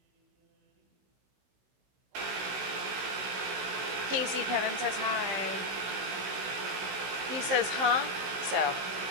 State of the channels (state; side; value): late; left; 16 ms